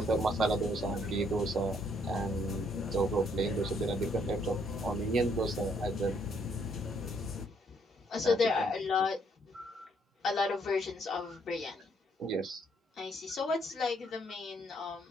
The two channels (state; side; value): normal; both; correlation 0.69